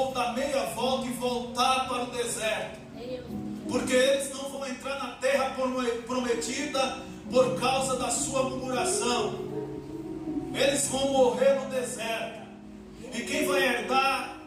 dar meia volta e voltar para o deserto, porque eles não vão entrar na terra prometida por causa da sua murmuração. Eles vão morrer no deserto, e quem vai herdar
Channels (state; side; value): identical; both; correlation 1.00